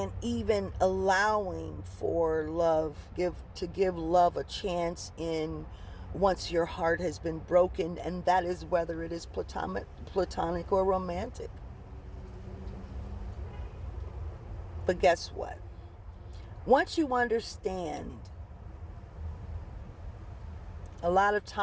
even allowing for love, to give love a chance in once your heart has been broken, and that is whether it is platonic or romantic. But guess what? Once you understand a lot of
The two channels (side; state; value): both; identical; correlation 1.00